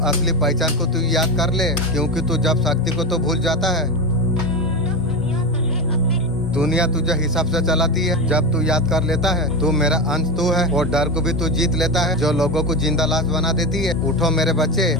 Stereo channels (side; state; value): both; normal; correlation 0.18